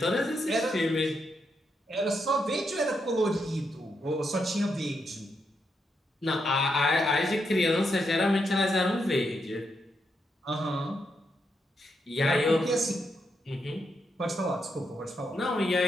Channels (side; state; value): both; normal; correlation 0.81